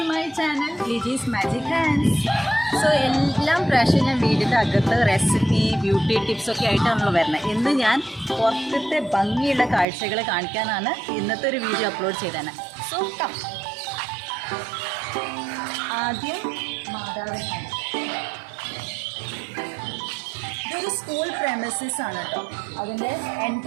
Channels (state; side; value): drops out; left; at 9.9 s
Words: ലിജീസ് മാജിക് ഹാൻഡ്സ്. സോ എല്ലാം പ്രാവശ്യം ഞാൻ വീടിൻ്റെ അകത്ത് റെസിപ്പി ബ്യൂട്ടി ടിപ്സൊക്കെ ആയിട്ടാണല്ലോ വരുന്നത്. ഇന്ന് ഞാൻ പുറത്തത്തെ ഭംഗിയുള്ള കാഴ്ചകൾ കാണിക്കാനാണ് ഇന്നത്തെ ഒരു വീഡിയോ അപ്ലോഡ് ചെയ്തത്. So come. ആദ്യം മാതാവിനെ. ഇതൊരു സ്കൂൾ പ്രെമിസസ് ആണ് കേട്ടോ. അതിൻ്റെ